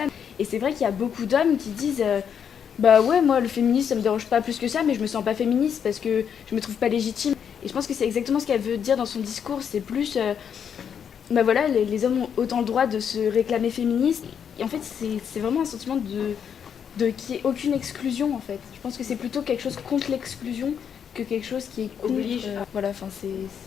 Et c'est vrai qu'il y a beaucoup d'hommes qui disent bah ouais, moi le féminisme ça me dérange pas plus que ça, mais je me sens pas féministe parce que je me trouve pas légitime. Et je pense que c'est exactement ce qu'elle veut dire dans son discours. C'est plus bah voilà, les hommes ont autant le droit de se réclamer féministes. Et en fait, c'est vraiment un sentiment qu'il n'y ait aucune exclusion en fait. Je pense que c'est plutôt quelque chose contre l'exclusion que quelque chose qui est contre, oblige. Voilà, enfin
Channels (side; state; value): right; quieter; 7.8 dB